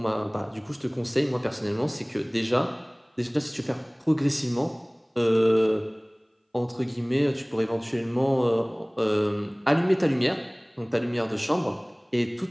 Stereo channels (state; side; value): identical; both; correlation 1.00